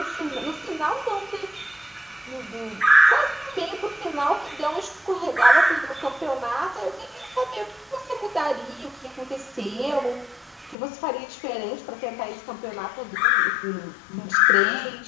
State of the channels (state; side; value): drops out; right; at 10.8 s